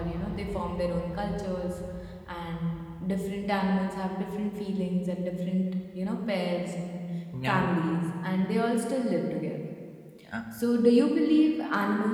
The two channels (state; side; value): identical; both; correlation 1.00